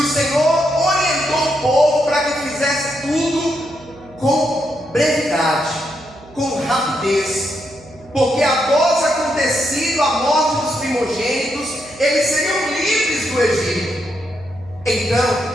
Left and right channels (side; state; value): right; noise; hum, 23 dB below the sound